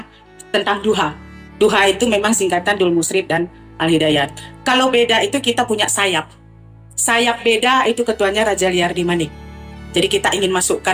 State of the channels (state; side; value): identical; both; correlation 1.00